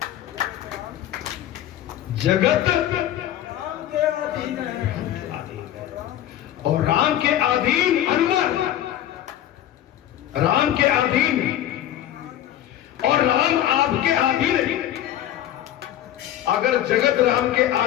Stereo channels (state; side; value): quieter; right; 12.1 dB